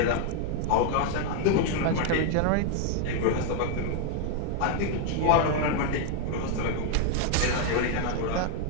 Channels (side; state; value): both; different; correlation 0.00